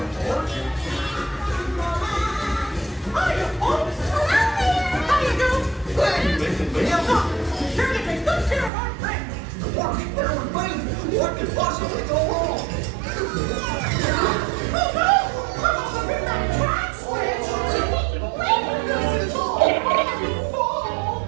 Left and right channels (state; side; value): drops out; left; at 8.7 s